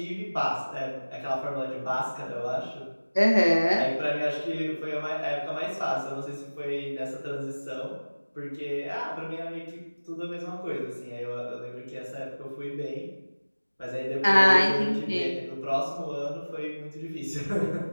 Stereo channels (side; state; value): both; inverted; correlation -1.00